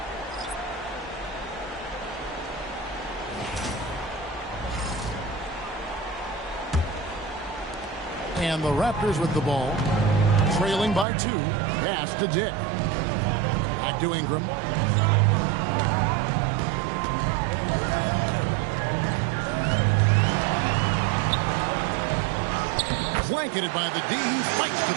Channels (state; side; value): drops out; left; at 11.1 s